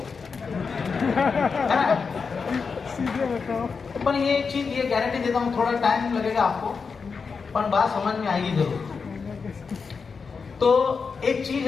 है ना। सीधे बताओ। पर ये चीज ये गारंटी देता हूँ थोड़ा टाइम लगेगा आपको, पर बात समझ में आएगी जरूर। तो एक चीज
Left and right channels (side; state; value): right; quieter; 5.2 dB